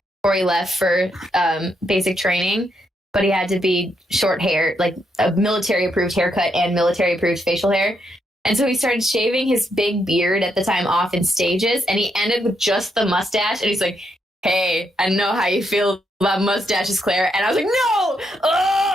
before he left for basic training, but he had to be short hair, like a military approved haircut and military approved facial hair. And so he started shaving his big beard at the time off in stages, and he ended with just the mustache. And he's like, hey, I know how you feel about mustaches, Claire. And I was like, no!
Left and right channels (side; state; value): both; normal; correlation 0.79